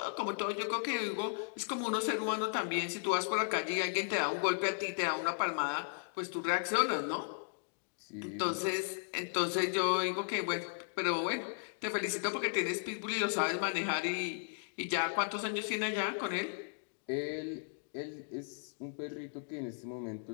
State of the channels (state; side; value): silent; right; digital silence